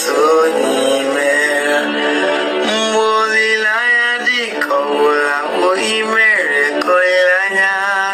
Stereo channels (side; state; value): both; identical; correlation 1.00